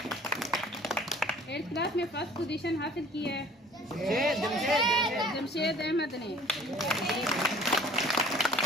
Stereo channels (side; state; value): both; normal; correlation 0.50